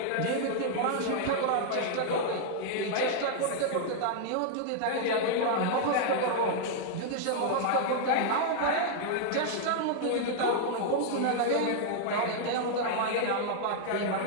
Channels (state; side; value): different; both; correlation -0.01